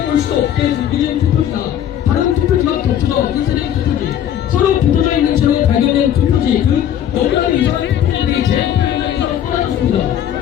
수 없게 준비된 투표지나 다른 투표지와 겹쳐져 인쇄된 투표지, 서로 붙어져 있는 채로 발견된 투표지 등 너무나 이상한 투표지들이 재투표 현장에서 쏟아졌습니다.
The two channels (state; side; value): quieter; right; 10.4 dB